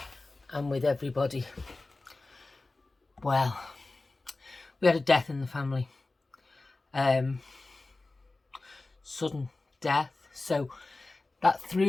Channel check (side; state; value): right; quieter; 3.2 dB